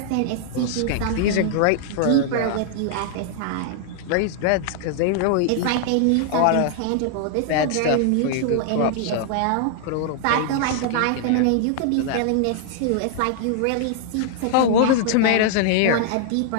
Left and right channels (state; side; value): different; both; correlation 0.00